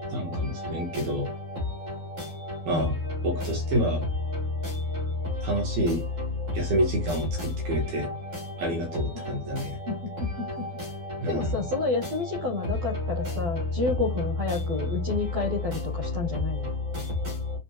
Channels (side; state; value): left; late; 12 ms